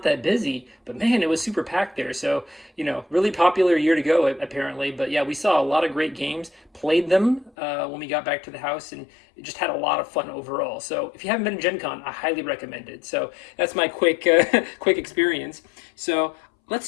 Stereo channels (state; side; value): drops out; right; at 7.5 s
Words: that busy, but man, it was super packed there. So, really popular year to go apparently. But yeah, we saw a lot of great games, played them when we got back to the house, and it just had a lot of fun overall. So if you haven't been to Gen Con, I highly recommend it. So that's my quick experience. So let's